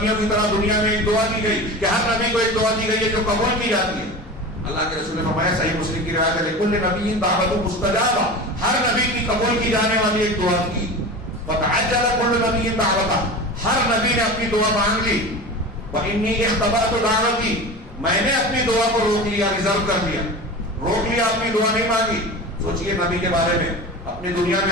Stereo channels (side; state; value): both; normal; correlation 0.31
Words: کی طرح دنیا میں ایک دعا دی گئی کہ ہر نبی کو ایک دعا دی گئی ہے جو قبول کی جاتی ہے. اللہ کے رسول نے فرمایا، صحیح مسلم کی روایت ہے، لکل نبی دعوت مستجابہ، ہر نبی کی قبول کی جانے والی ایک دعا تھی. فتعجل كل نبی دعوتہ، ہر نبی نے اپنی دعا مانگ لی. وانی اختبأت دعوتی، میں نے اپنی دعا کو روک لیا، ریزرو کر دیا، روک لیا، اپنی دعا نہیں مانگی. سوچئے نبی کے بارے میں، اپنی دنیا